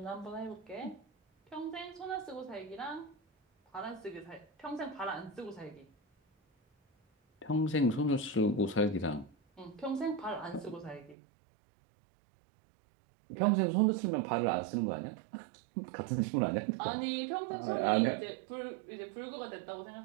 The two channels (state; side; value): drops out; left; at 11.2 s